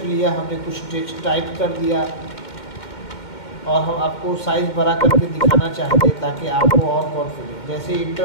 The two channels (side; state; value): right; late; 2.1 ms